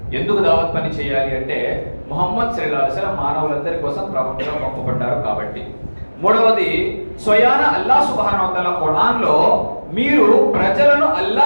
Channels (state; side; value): inverted; both; correlation -1.00